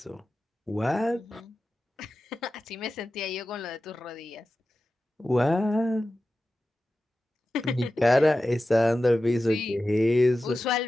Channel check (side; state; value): both; normal; correlation 0.94